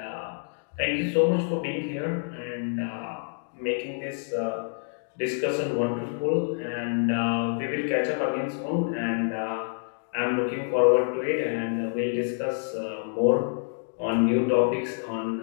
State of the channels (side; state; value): right; silent; digital silence